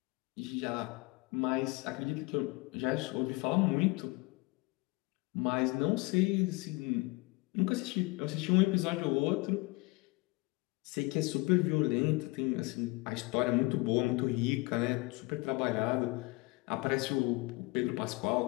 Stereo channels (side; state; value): right; quieter; 24.5 dB